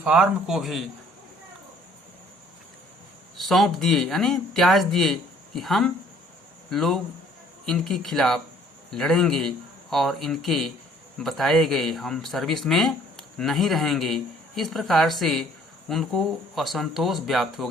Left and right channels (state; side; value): normal; both; correlation 0.58